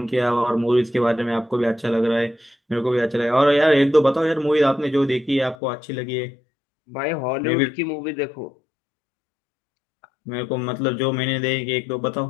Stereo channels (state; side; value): drops out; right; at 5.6 s